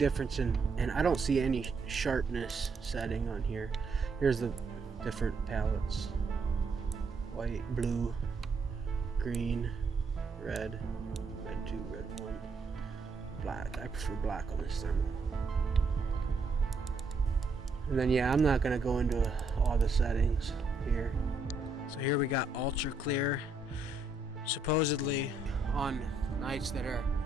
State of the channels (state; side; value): quieter; left; 3.5 dB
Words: and I don't see any sharpness setting on here. Here's the different palettes. White, blue, green, red, red 2, red 1, black. I prefer black on this thermal. And then yeah, I'm not gonna go into all the settings here. So here we got ultra clear. Supposedly on nights that are,